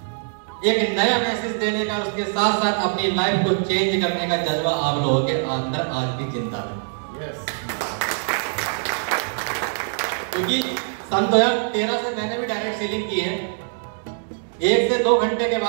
एक नया मैसेज देने का, उसके साथ साथ अपनी लाइफ को चेंज करने का जज्बा आप लोगों के अंदर आज भी जिंदा है। क्योंकि सन 2013 से मैंने भी डायरेक्ट सेलिंग की है। 1 से 2 घंटे के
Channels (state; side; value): silent; left; digital silence